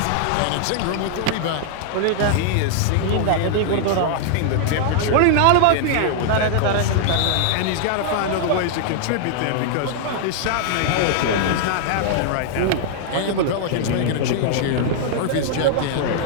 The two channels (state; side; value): different; both; correlation -0.01